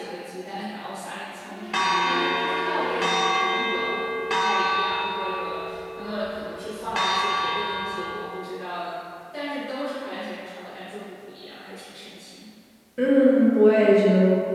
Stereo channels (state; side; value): identical; both; correlation 1.00